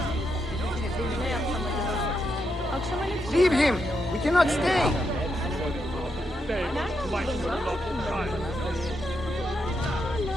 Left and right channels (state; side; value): normal; both; correlation 0.82